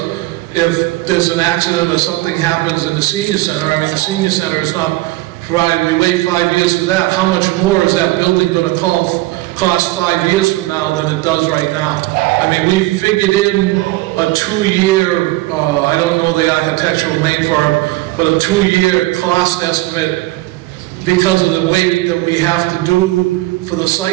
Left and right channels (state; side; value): quieter; left; 19.2 dB